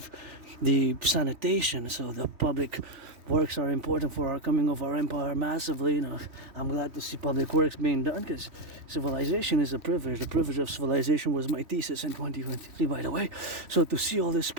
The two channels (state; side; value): late; left; 3.1 ms